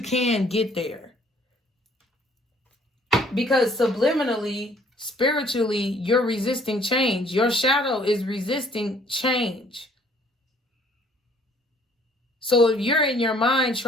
can get there. Because subliminally, spiritually, you're resisting change. Your shadow is resisting change. So if you're in your mind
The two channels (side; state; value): both; normal; correlation 0.60